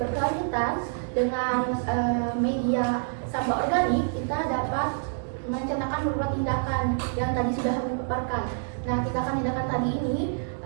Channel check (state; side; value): silent; left; digital silence